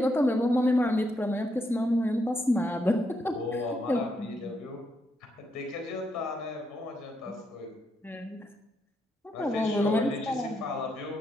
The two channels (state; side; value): normal; both; correlation 0.79